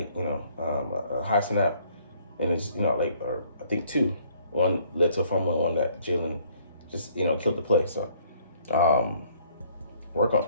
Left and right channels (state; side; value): inverted; both; correlation -0.63